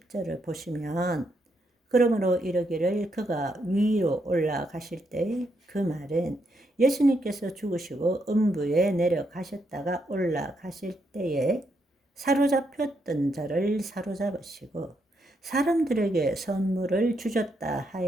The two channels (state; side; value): normal; both; correlation 0.78